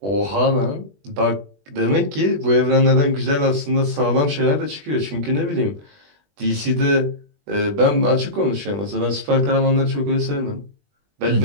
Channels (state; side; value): late; left; 20 ms